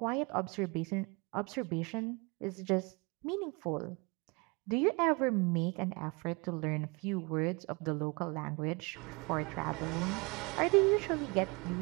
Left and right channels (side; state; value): left; quieter; 28.7 dB